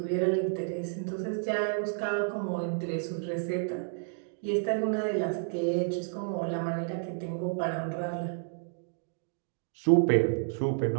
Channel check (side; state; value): left; silent; digital silence